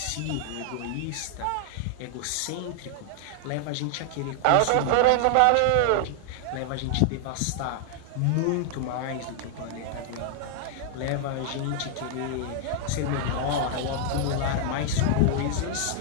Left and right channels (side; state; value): both; different; correlation 0.00